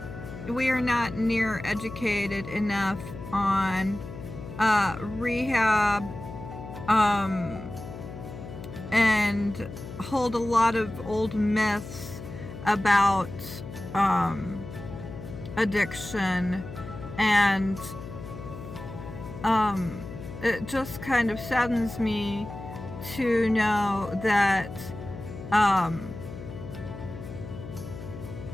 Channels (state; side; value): noise; left; hum, 11 dB below the sound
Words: we are not near educated enough on rehab and hold a lot of old myths about addiction, and it just kind of saddens me to know that